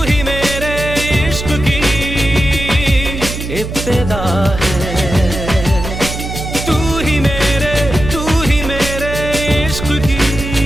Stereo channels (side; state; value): right; noise; hum, 7 dB below the sound